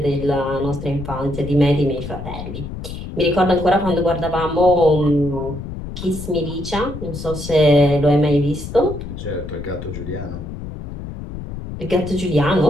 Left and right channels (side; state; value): left; noise; rumble, 9 dB below the sound